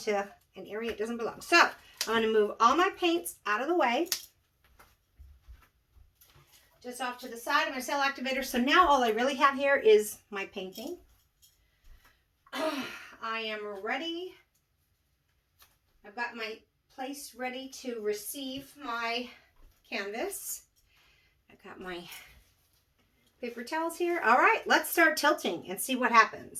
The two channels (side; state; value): both; identical; correlation 1.00